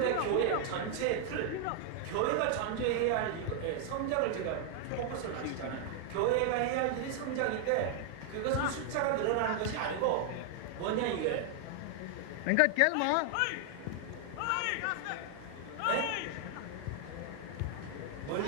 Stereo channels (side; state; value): both; different; correlation 0.00